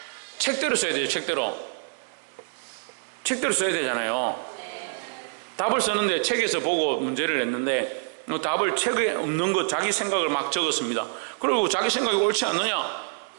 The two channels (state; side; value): silent; left; digital silence